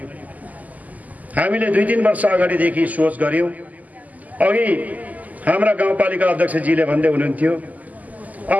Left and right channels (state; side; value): late; left; 0.078 ms